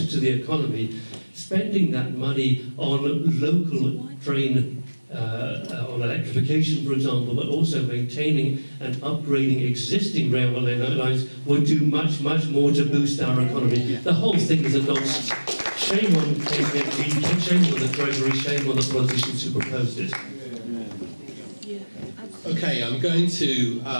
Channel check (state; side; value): inverted; both; correlation -1.00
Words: to the economy, spending that money on local train, on electrification, for example, but also maintaining and upgrading existing railway lines would do much, much more to boost our economy. The whole thing is a nonsense. Shame on KPMG, shame on the Treasury, shame on the politicians who proposed it. Okay, I'm going to